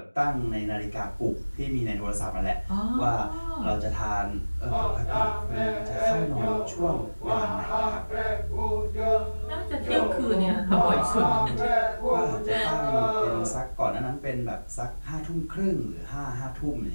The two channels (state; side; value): inverted; both; correlation -1.00